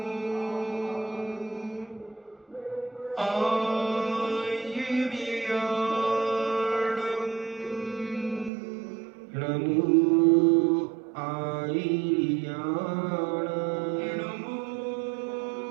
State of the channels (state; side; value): drops out; left; at 8.5 s